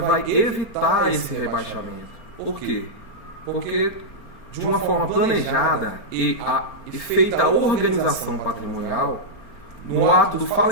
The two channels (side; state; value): right; late; 4.4 ms